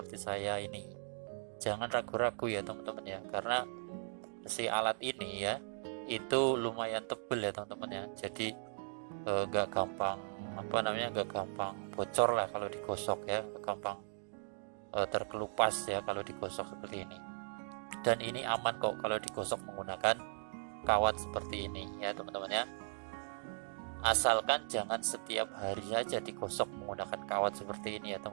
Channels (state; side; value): silent; left; digital silence